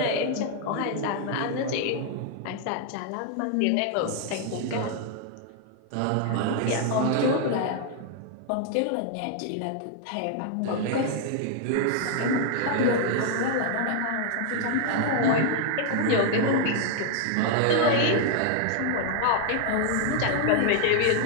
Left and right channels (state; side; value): different; both; correlation 0.00